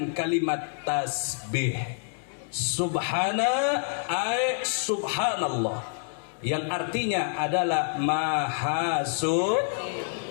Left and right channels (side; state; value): right; silent; 60 dB below the other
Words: kalimat tasbih. Subhana ay subhanallah, yang artinya adalah maha suci.